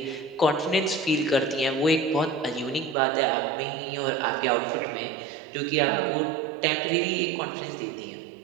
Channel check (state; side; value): drops out; left; at 3.0 s